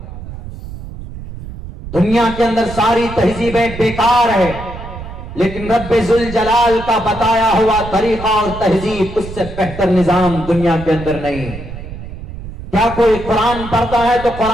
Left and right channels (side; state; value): right; noise; rumble, 11 dB below the sound